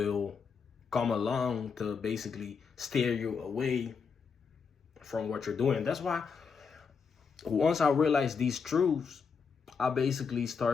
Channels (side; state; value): right; quieter; 5.7 dB